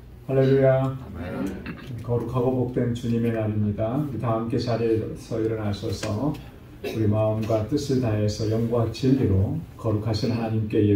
할렐루야. 거룩하고 복된 주님의 날입니다. 다 함께 자리에서 일어나셔서 우리 마음과 뜻을 다해서 영과 진리로 거룩하신 하나님께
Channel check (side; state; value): both; identical; correlation 1.00